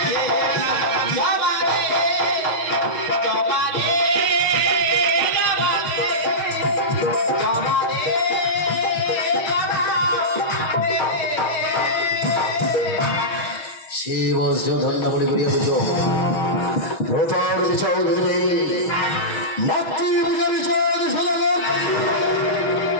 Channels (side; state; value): right; late; 6.2 ms